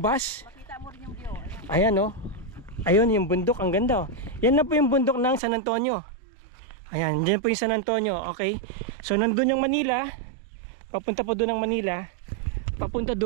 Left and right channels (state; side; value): drops out; left; at 5.4 s